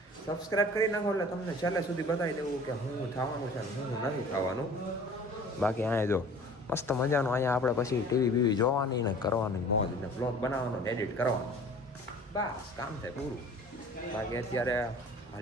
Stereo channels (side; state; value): both; normal; correlation 0.46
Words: સબસ્ક્રાઈબ કરી નાખો એટલે તમને છેલ્લે સુધી બતાવી દેવું કે હું થવાનું છે ને હું નથી થવાનું. બાકી અહીંયા જો મસ્ત મજાનું અહીંયા આપણે પછી ટીવી બીવી જોવાની ને કરવાની મોજ ને બ્લોગ બનાવવાનો ને એડિટ કરવાનો, બસ કામ થાય પૂરું. બાકી અત્યારે